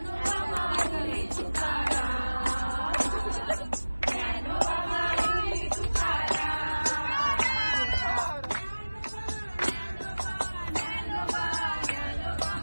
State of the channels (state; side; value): inverted; both; correlation -1.00